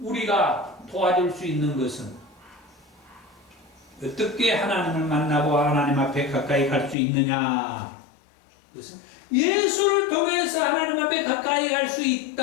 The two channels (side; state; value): right; drops out; at 7.0 s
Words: 도와줄 수 있는 것은 어떻게 하나님을 만나고 하나님 앞에 가까이 갈 수 있느냐? 그것은 예수를 통해서 하나님 앞에 가까이 갈 수